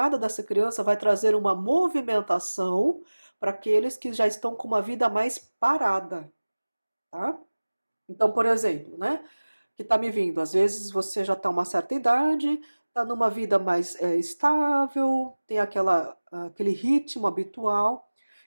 dessa criança vai trazer uma movimentação para aqueles que já estão com uma vida mais parada, tá? Então, por exemplo, né, que está me vindo, às vezes você já está uma certa idade, está numa vida mais estável, tem aquele ritmo habitual,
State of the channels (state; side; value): inverted; both; correlation -1.00